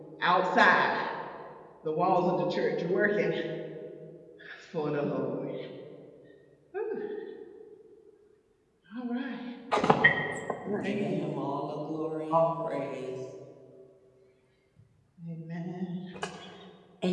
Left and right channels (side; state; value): both; identical; correlation 1.00